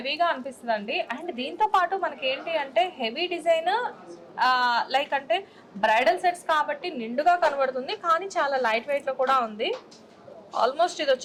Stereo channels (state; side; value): identical; both; correlation 1.00